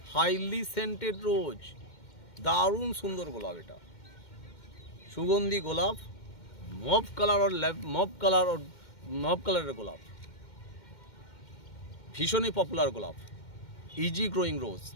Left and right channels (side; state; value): right; late; 2.1 ms